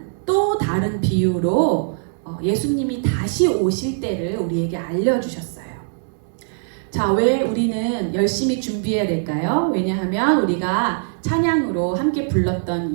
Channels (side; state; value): left; silent; digital silence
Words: 또 다른 비유로 예수님이 다시 오실 때를 우리에게 알려주셨어요. 자, 왜 우리는 열심히 준비해야 될까요? 왜냐하면 우리가 찬양으로 함께 불렀던